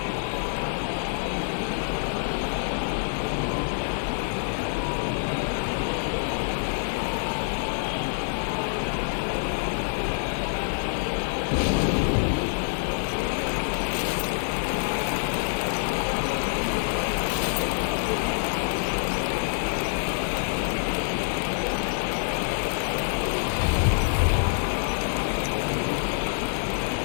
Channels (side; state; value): right; silent; digital silence